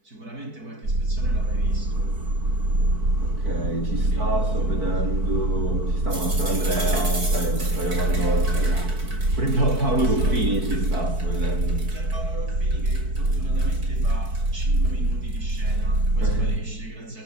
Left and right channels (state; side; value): late; left; 4.6 ms